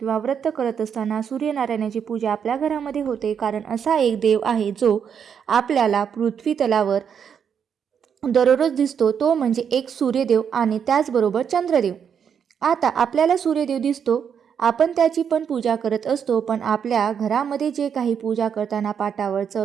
व्रत करत असताना सूर्यनारायणाची पूजा आपल्या घरामध्ये होते, कारण असा एक देव आहे जो आपल्याला पृथ्वी तलावर दररोज दिसतो, तो म्हणजे एक सूर्यदेव आणि त्याचबरोबर चंद्रदेव. आता आपल्याला सूर्यदेव दिसतो, आपण त्याची पण पूजा करत असतो, पण आपल्या घरामध्ये जे काही पूजा करताना पाटावर,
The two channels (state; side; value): quieter; left; 7.6 dB